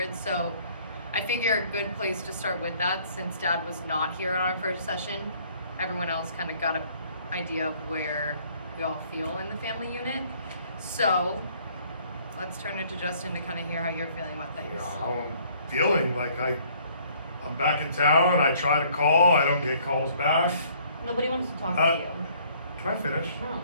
So I figure a good place to start with that, since Dad was not here on our first session, everyone else kind of got an idea of where we all feel in the family unit. So let's turn it to Justin to kind of hear how you're feeling about things. You know, how I'm feeling, like I'm back in town, I try to call, I don't get calls back. Nobody wants to talk to you. Can I finish? No.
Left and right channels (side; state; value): both; inverted; correlation -0.60